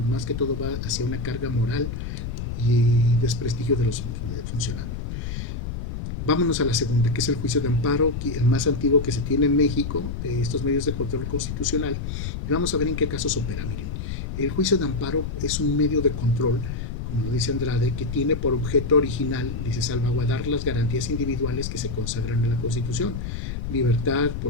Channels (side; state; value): left; noise; rumble, 5 dB below the sound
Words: que todo va hacia una carga moral y desprestigio de los funcionarios. Vámonos a la segunda, que es el juicio de amparo, el más antiguo que se tiene en México, de estos medios de control constitucional, y vamos a ver en qué casos opera. Miren, el juicio de amparo es un medio de control, como lo dice Andrade, que tiene por objeto original, dice, salvaguardar las garantías individuales que se consagran en la Constitución. Libertad,